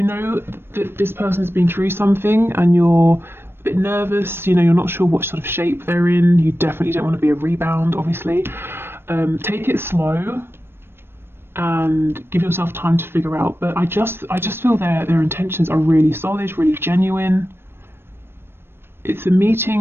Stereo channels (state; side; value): late; left; 0.11 ms